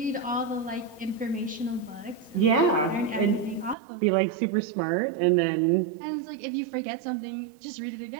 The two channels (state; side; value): drops out; left; at 3.8 s